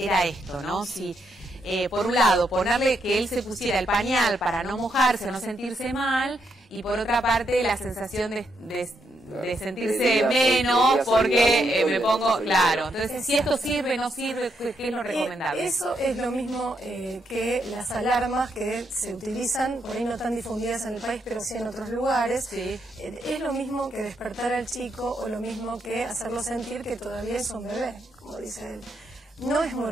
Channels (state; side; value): normal; both; correlation 0.79